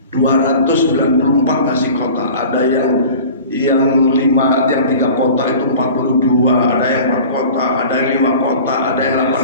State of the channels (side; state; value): both; inverted; correlation -0.41